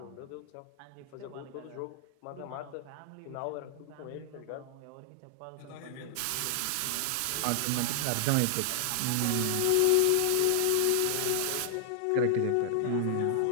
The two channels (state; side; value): different; both; correlation -0.01